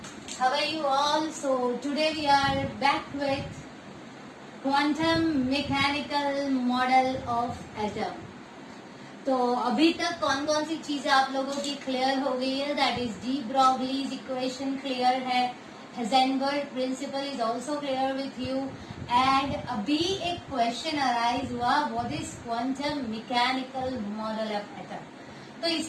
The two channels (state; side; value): identical; both; correlation 1.00